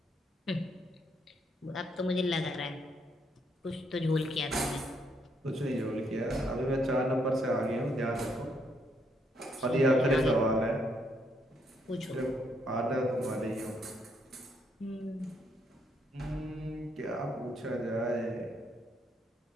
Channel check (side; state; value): both; normal; correlation 0.73